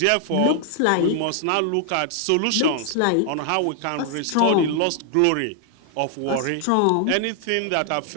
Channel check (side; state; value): both; different; correlation 0.00